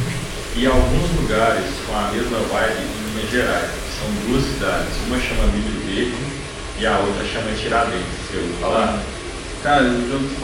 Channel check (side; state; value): both; identical; correlation 1.00